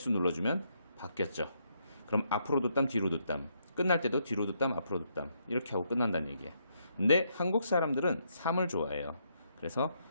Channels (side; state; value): both; inverted; correlation -0.76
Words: 눌러주면 바뀌었죠. 그럼 앞으로 두 땀, 뒤로 두 땀. 끝날 때도 뒤로 두 땀, 앞으로 두 땀. 이렇게 하고 끝난다는 얘기예요. 근데 한국 사람들은 3을 좋아해요. 그래서